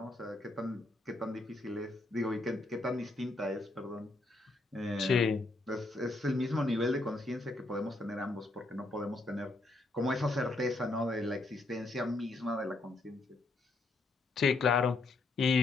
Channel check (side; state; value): right; quieter; 3.0 dB